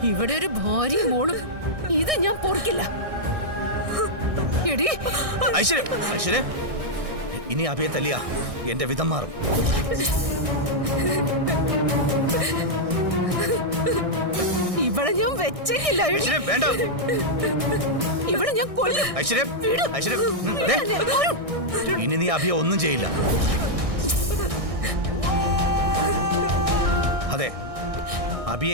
ഇവിടെ ഒരു ഭാര്യയും മോളും ഇത് ഞാൻ പൊറുക്കില്ല. എടി ഐശ്വര്യ ഐശ്വര്യ ഇനി അഭിയെ തല്ലിയ എന്റെ വിധം മാറും. ഇവിടെ ഞാൻ വെച്ചേക്കില്ല. എടി. ഐശ്വര്യ വേണ്ട ഇവിടെ ഞാൻ കൊല്ലും. ഐശ്വര്യ ഐശ്വര്യ ദേ, ഇനി നീ അഭിയെ ഒന്നും ചെയ്യില്ല. അതെ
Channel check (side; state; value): left; late; 1.6 ms